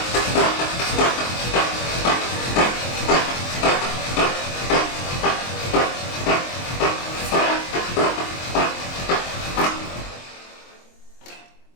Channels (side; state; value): right; late; 23 ms